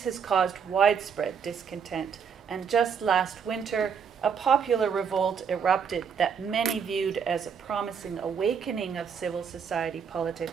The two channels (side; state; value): left; quieter; 6.8 dB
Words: has caused widespread discontent, and just last winter, a popular revolt erupted that many viewed as a promising awakening of civil society